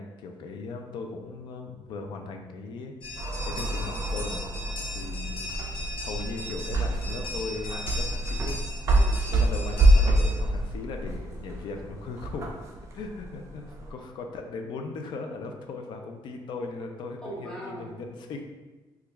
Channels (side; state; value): both; normal; correlation 0.72